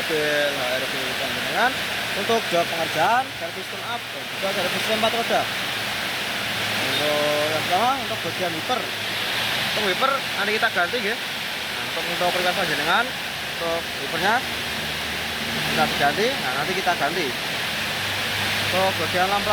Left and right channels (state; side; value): identical; both; correlation 1.00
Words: HRV Panjenengan untuk job pengerjaan servis tune up dan juga servis rem 4 roda. Untuk yang pertama untuk bagian wiper. Untuk wiper nanti kita ganti Nah, untuk request panjenengan untuk wipernya kita ganti. Nah, nanti kita ganti. Untuk bagian